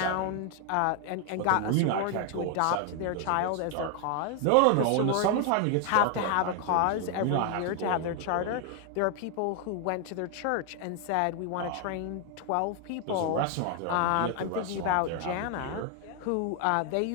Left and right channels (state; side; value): different; both; correlation 0.00